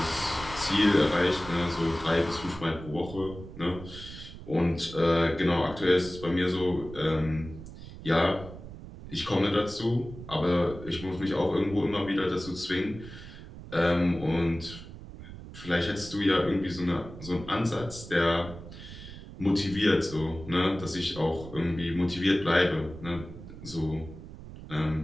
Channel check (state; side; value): noise; right; rumble, 14 dB below the sound